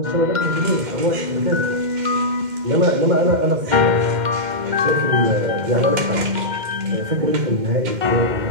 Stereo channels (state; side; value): late; left; 2.1 ms